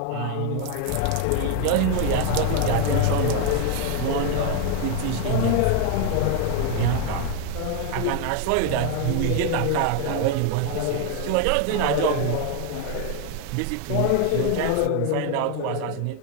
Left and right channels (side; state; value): both; different; correlation 0.01